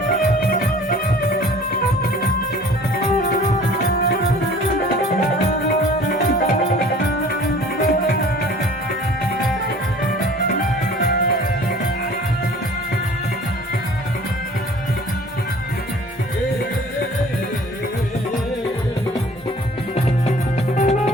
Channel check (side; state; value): both; normal; correlation 0.48